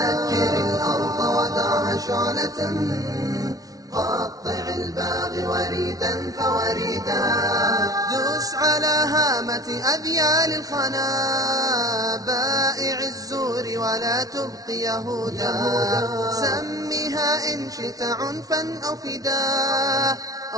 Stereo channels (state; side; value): late; left; 0.18 ms